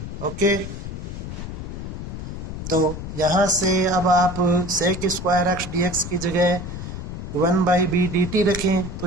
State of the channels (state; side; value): noise; left; rumble, 8 dB below the sound